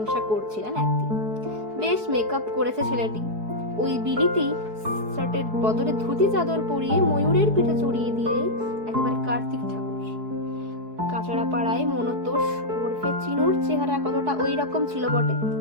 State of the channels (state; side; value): late; left; 4.7 ms